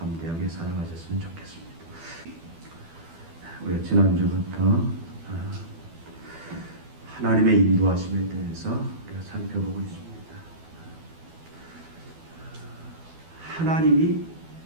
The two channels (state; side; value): late; left; 12 ms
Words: 살아가셨으면 좋겠습니다. 우리가 지난주부터 하나님의 인도하심에 대해서 우리가 살펴보고 있습니다. 하나님이